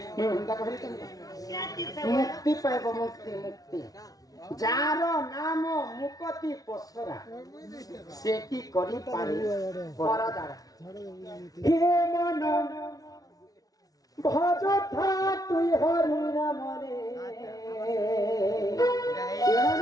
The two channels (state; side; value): late; right; 0.18 ms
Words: मुक्ति पाइब मुक्ति मुक्ति जार नाम मुक्ति पसरा से की करी पारे परदार हे मन भज था तुई हरि नाम रे